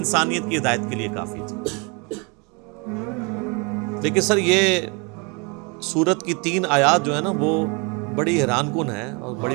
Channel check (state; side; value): quieter; left; 31.3 dB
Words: کی ہدایت کے لیے کافی تھی۔ لیکن سر یہ سورت کی 3 آیات جو ہے نا وہ بڑی حیران کن ہے اور